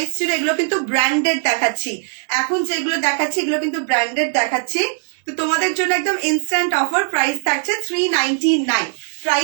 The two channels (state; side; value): silent; left; 64 dB below the other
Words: ছিল। এগুলো কিন্তু ব্র্যান্ডেড দেখাচ্ছি, এখন যেগুলো দেখাচ্ছি এগুলো কিন্তু ব্র্যান্ডেড দেখাচ্ছি। তো তোমাদের জন্য একদম ইনস্ট্যান্ট অফার, প্রাইস থাকছে 399,